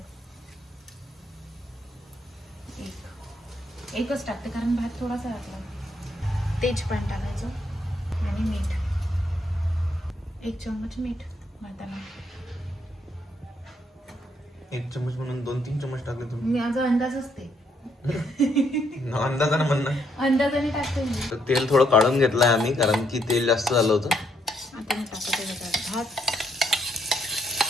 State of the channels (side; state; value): both; normal; correlation 0.73